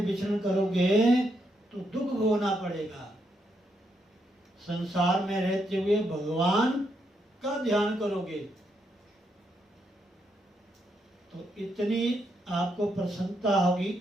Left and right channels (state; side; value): normal; both; correlation 0.79